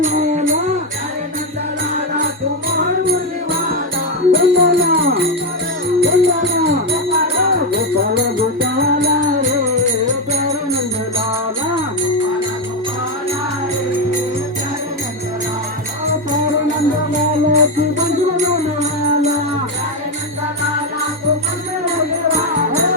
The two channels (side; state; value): both; normal; correlation 0.08